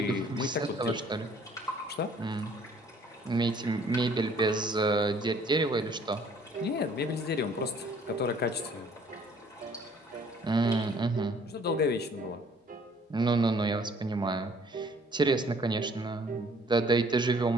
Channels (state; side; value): normal; both; correlation 0.58